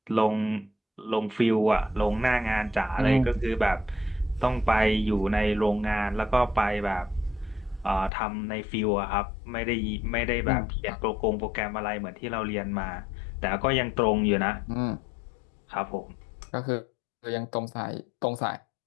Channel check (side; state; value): right; drops out; at 8.1 s